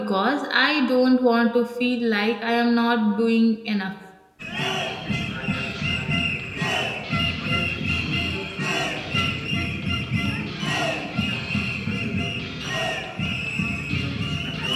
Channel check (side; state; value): both; identical; correlation 1.00